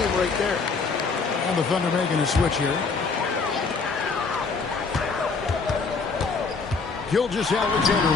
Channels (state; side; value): quieter; right; 4.6 dB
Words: right there. And the Thunder making a switch here. Gilgeous-Alexander